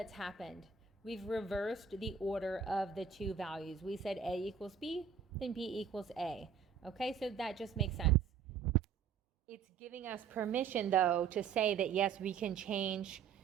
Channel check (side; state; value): left; quieter; 6.9 dB